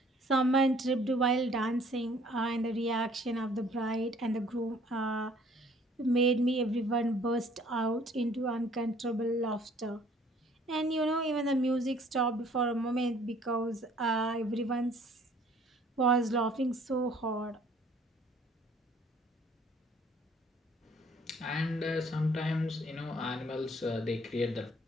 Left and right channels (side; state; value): both; normal; correlation 0.57